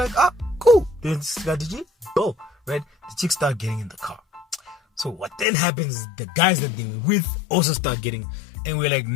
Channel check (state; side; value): drops out; right; at 5.5 s